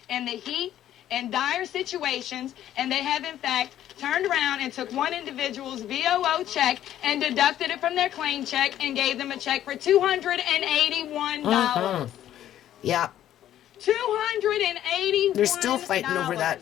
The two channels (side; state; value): right; quieter; 11.8 dB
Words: in the heat, in dire situations, and they have in fact turned around and took one individual's VOO check and deducted it from their claim check and gave them a check for $281. Yeah. $281. They're still fighting over